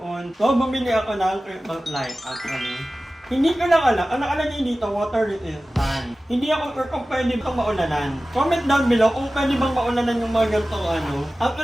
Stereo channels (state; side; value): normal; both; correlation 0.96